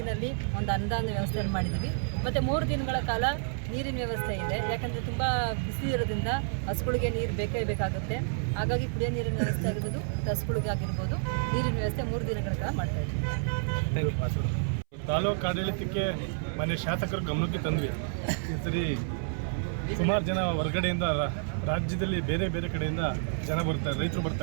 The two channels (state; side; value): silent; left; 58 dB below the other